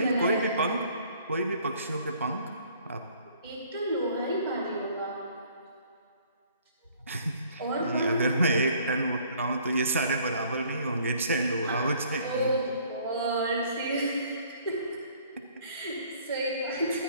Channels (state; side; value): inverted; both; correlation -0.58